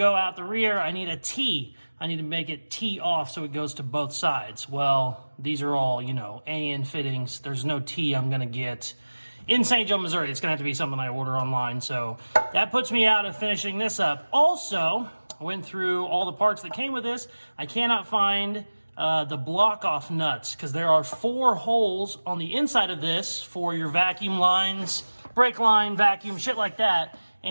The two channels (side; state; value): both; inverted; correlation -1.00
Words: out the rear, I need a T. I need to make it T off so it goes to both sides. Well, these are all, you know, AN fittings. There's no T I'm gonna get in St. Joe, Missouri. It's gonna have to be something I order online. So that puts me out of finishing this up. Also, I went through all the parts that came with this. I cannot find the block off nuts because there are 4 holes on the inside of this for your vacuum lines, brake line, vacuum, shit like that.